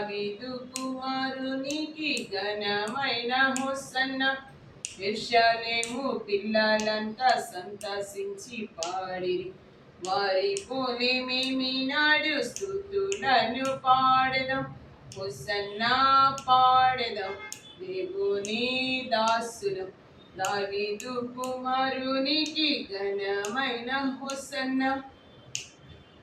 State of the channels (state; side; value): identical; both; correlation 1.00